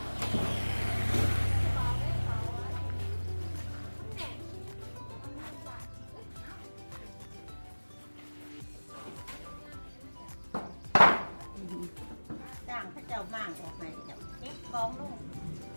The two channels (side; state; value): both; inverted; correlation -1.00